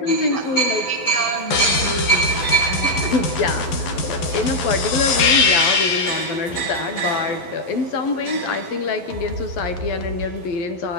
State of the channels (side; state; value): right; late; 11 ms